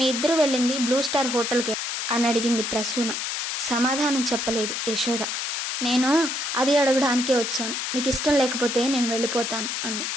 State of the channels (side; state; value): left; noise; hiss, 3 dB below the sound